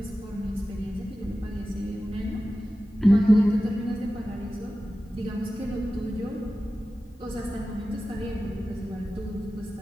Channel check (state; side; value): normal; both; correlation 0.95